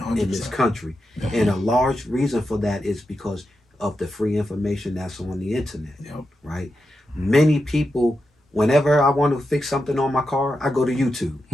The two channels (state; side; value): normal; both; correlation 0.88